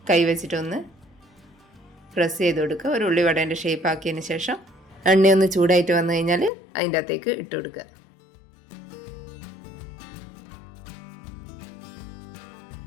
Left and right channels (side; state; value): right; drops out; at 6.5 s